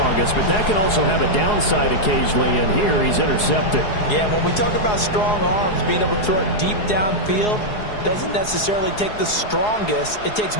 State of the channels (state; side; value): late; right; 4.8 ms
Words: but that can also have a downside occasionally, and here he's intercepted. Yeah, when we talk about strong arms, being able to throw it deep downfield doesn't necessarily take the strongest. It takes